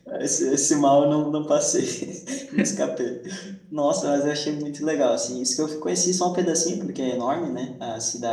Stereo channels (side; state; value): both; identical; correlation 1.00